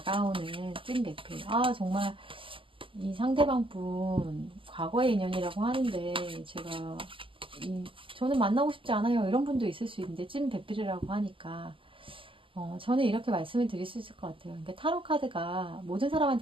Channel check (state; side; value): late; left; 0.25 ms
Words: 찐 배필. 정말 이 상대방 분 과거의 인연이라고 하는데 제가 저는 만나고 싶지 않아요. 이런 분도 있을 수 있는데 찐 배필이라고 하니까 저는 이렇게 말씀을 드릴 수 있을 것 같아요. 그러니까 타로 카드가 모든